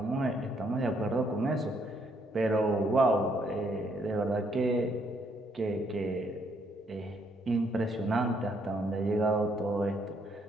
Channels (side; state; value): both; normal; correlation 0.71